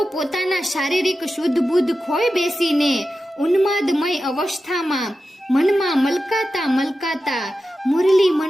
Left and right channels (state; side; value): normal; both; correlation 0.92